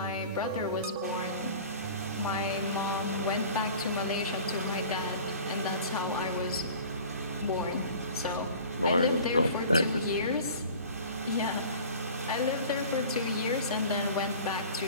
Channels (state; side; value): inverted; both; correlation -0.43